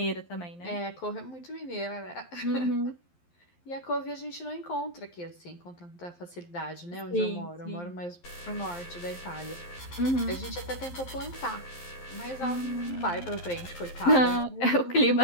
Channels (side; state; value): right; late; 11 ms